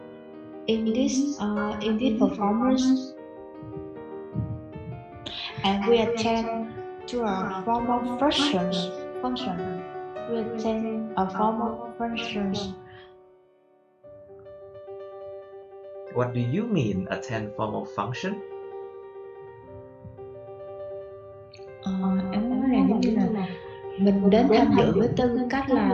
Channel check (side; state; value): both; identical; correlation 1.00